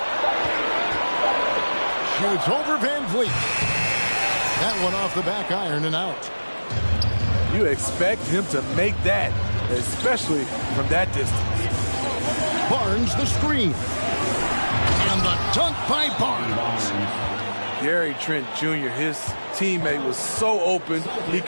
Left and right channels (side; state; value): both; inverted; correlation -1.00